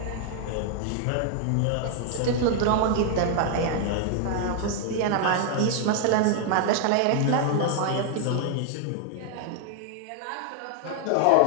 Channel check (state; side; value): different; both; correlation 0.00